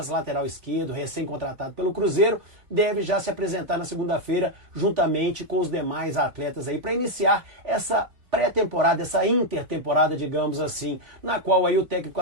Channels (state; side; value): late; left; 3.6 ms